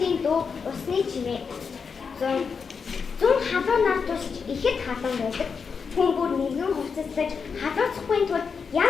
дуу, усны чимээ. Зун халуун нар тусч ихэд халуун байдаг. Хүн бүр нэгэн хувцаслаж халууцахгүй тул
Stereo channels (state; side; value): quieter; right; 5.7 dB